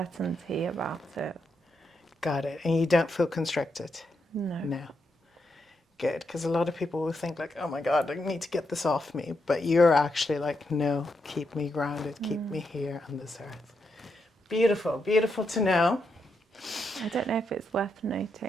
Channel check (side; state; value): both; normal; correlation 0.82